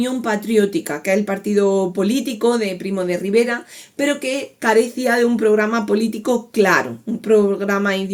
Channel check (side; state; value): both; identical; correlation 1.00